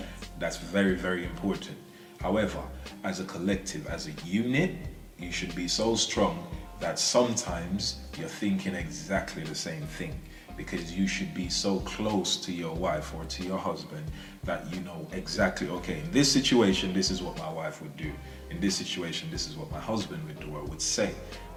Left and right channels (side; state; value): both; identical; correlation 1.00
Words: That's very, very important. However, as a collective, as a unit, you should be so strong that sometimes you're thinking exactly the same thing, because you should be so close to your wife or to your husband that you know exactly, okay, in this situation, this is what my wife would do. In this situation, this is what my husband would do or would say,